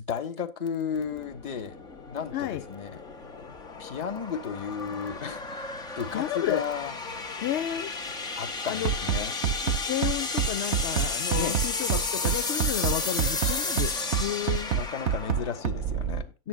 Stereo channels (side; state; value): left; late; 3.5 ms